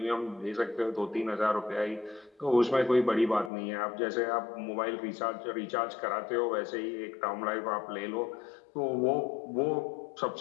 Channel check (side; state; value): right; drops out; at 3.5 s